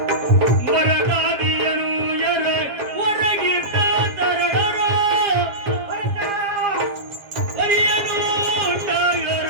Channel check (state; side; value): late; left; 7.4 ms